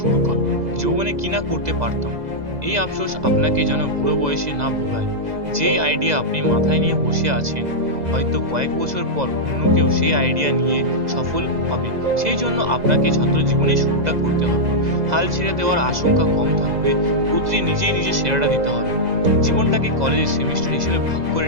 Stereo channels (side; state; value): left; late; 2.0 ms